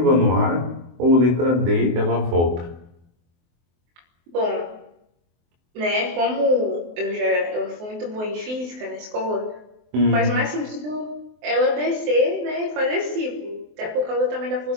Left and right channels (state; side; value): late; left; 23 ms